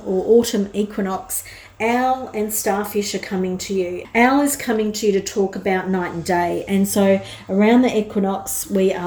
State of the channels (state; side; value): identical; both; correlation 1.00